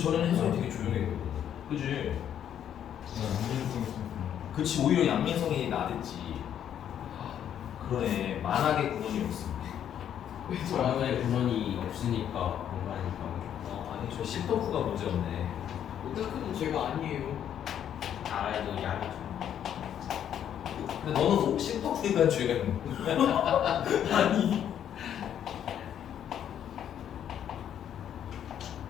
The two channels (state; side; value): quieter; right; 9.7 dB